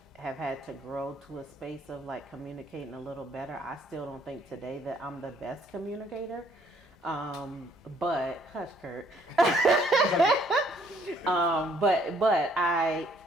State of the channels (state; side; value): normal; both; correlation 0.64